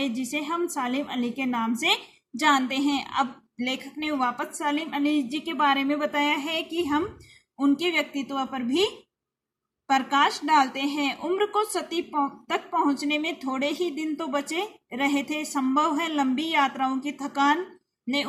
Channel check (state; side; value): identical; both; correlation 1.00